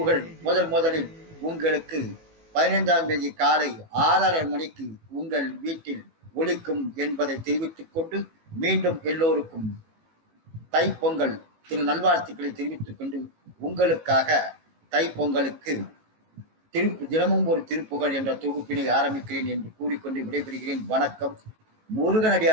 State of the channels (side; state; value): left; late; 18 ms